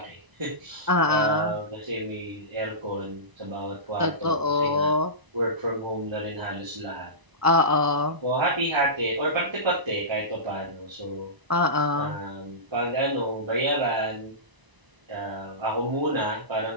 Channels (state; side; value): late; left; 1.0 ms